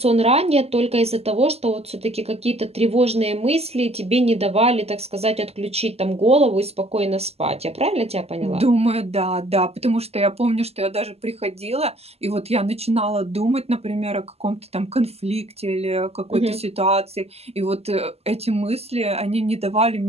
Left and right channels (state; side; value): late; left; 0.29 ms